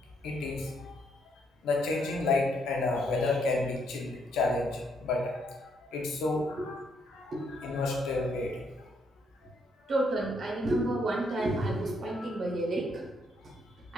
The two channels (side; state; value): both; normal; correlation 0.73